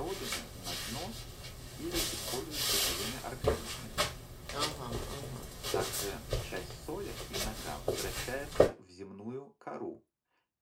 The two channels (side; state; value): both; identical; correlation 1.00